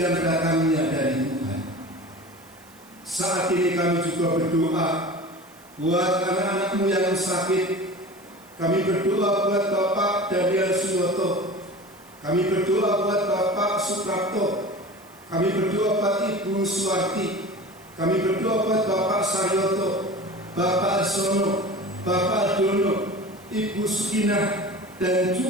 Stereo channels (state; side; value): noise; right; hiss, 26 dB below the sound